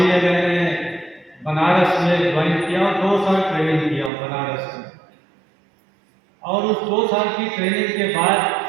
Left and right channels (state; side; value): drops out; left; at 4.1 s